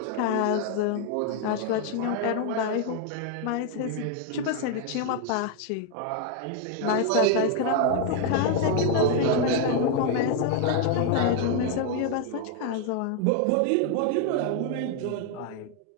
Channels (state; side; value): different; both; correlation 0.00